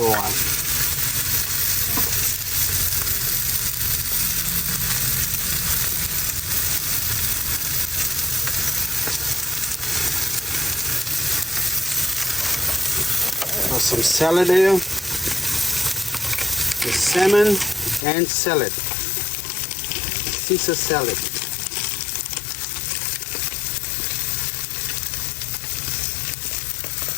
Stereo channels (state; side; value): drops out; right; at 18.1 s